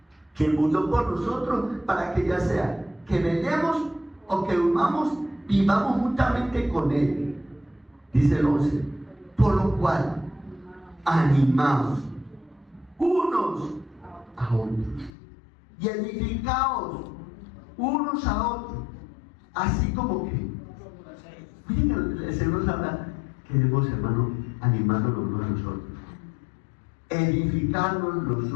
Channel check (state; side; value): drops out; right; at 15.1 s